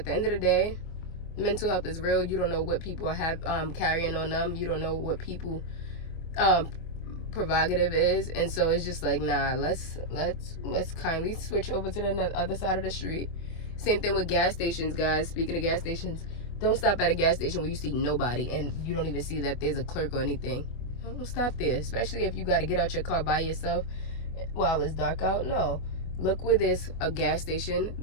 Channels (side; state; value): right; late; 24 ms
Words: the end of the day, mental health is real. You don't know what people have carrying on them. You don't know what people prerogative is. And so it's just like, nah, let's kindly switch over to the other side of the street. Same thing with gas stations, guys. Speaking of gas stations, don't stop at a gas station where you see nobody and you don't even see that there's a clerk or anything. Don't stop there, especially if you got to get out your car by yourself. while it's dark out. No. Look where there's a gas station